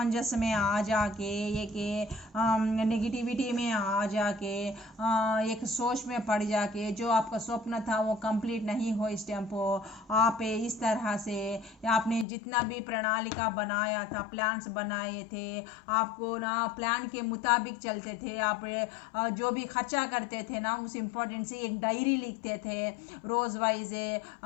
में आ जाके, एक नेगेटिविटी में आ जाके, एक सोच में पड़ जाके, जो आपका स्वप्न था वो कंप्लीट नहीं हो इस टाइम पर, आप इस तरह से आपने जितना भी प्रणालिका बनाया था, प्लान्स बनाए थे, आपको ना प्लान के मुताबिक चलते थे। आप जो भी खर्चा करते थे ना, उस इम्पोर्टेंट से एक डायरी लिखते थे रोज़ वाइज,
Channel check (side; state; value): right; drops out; at 12.2 s